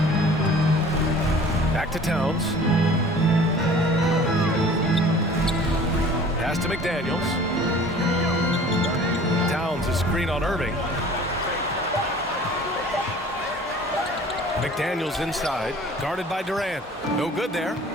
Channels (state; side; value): normal; both; correlation 0.47